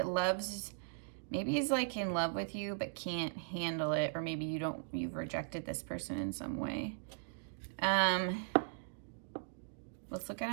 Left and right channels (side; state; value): left; silent; digital silence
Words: loves, maybe he's like in love with you but can't handle it, or maybe you've rejected this person in some way. Let's look